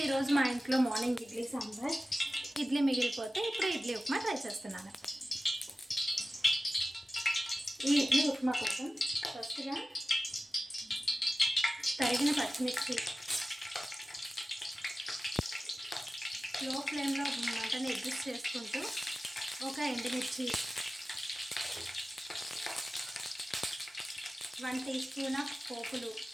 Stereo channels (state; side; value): normal; both; correlation 0.95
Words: ఈరోజు మా ఇంట్లో మార్నింగ్ ఇడ్లీ సాంబార్, ఇడ్లీ మిగిలిపోతే ఇప్పుడు ఇడ్లీ ఉప్మా ట్రై చేస్తున్నాను. ఈ ఇడ్లీ ఉప్మా కోసం ఫస్ట్గా తరిగిన పచ్చిమిర్చి, లో ఫ్లేమ్లో మంటని అడ్జస్ట్ చేసుకుంటూ ఒక ఎండుమిర్చి, 1 టీ స్పూన్ ఆఫ్ పోపులు